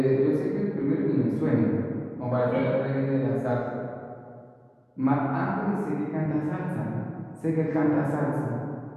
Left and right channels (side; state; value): both; identical; correlation 1.00